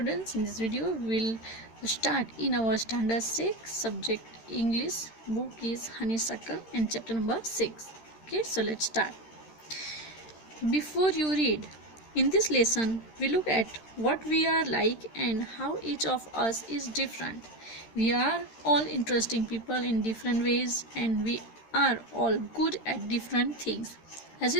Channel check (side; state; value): right; late; 13 ms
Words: in this video we'll start in our standard 6 subject English. Book is Honeysuckle and chapter number 6. Okay, so let's start. Before you read, in this lesson we look at what we are like and how each of us is different. We are all interesting people in different ways and we are all good at different things. As